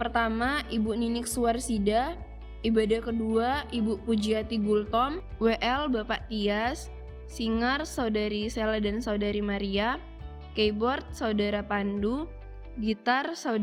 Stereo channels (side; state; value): both; identical; correlation 1.00